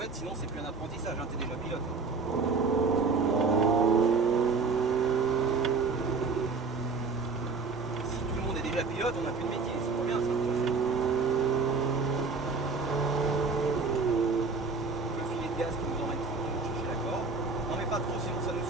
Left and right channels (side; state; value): left; quieter; 4.4 dB